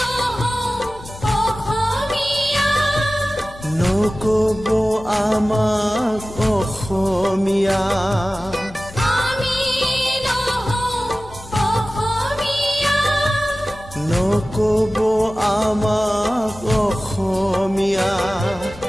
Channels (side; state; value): left; noise; hum, 19 dB below the sound